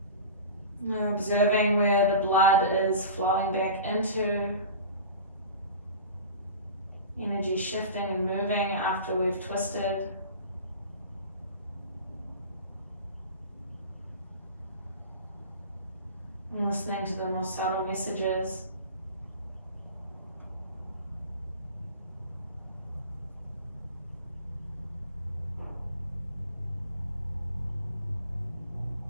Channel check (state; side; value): inverted; both; correlation -0.36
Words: We're observing where the blood is flowing back into, energy shifting and moving after we've twisted. And listening to the more subtle messages.